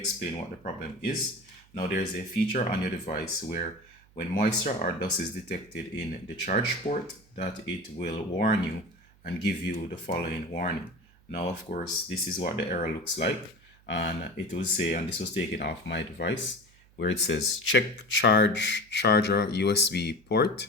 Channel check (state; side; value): noise; right; hum, 29 dB below the sound